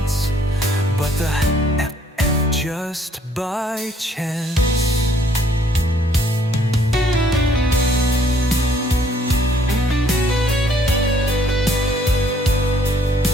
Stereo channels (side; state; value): both; normal; correlation 0.64